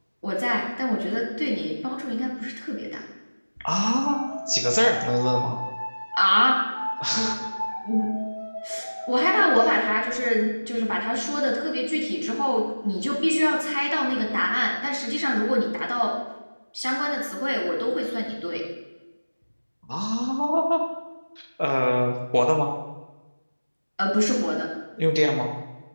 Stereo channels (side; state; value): both; inverted; correlation -1.00